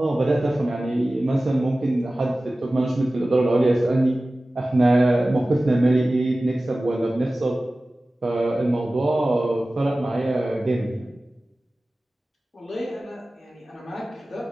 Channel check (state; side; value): normal; both; correlation 0.97